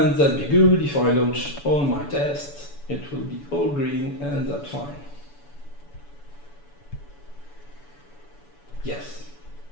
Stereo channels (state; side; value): late; right; 7.0 ms